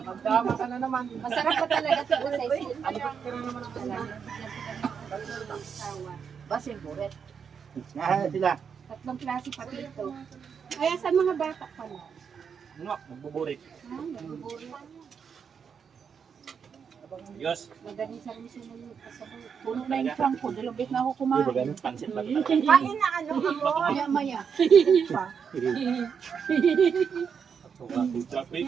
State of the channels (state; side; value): quieter; left; 6.7 dB